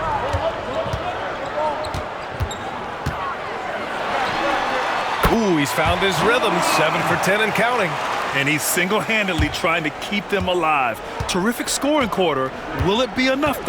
Ooh, he's found his rhythm. 7 for 10 and counting. And he's single-handedly trying to keep them alive. Terrific scoring quarter. Will it be enough,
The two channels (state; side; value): identical; both; correlation 1.00